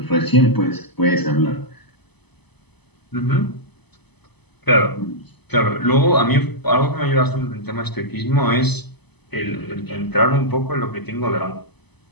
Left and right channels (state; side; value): late; right; 0.99 ms